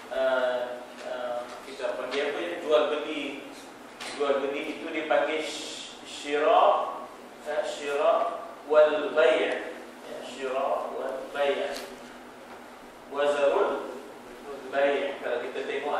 kita panggil apa ya, jual beli itu dipanggil syira wal bay', syira wal bay', wazarul bay'. Kalau kita tengok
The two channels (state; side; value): identical; both; correlation 1.00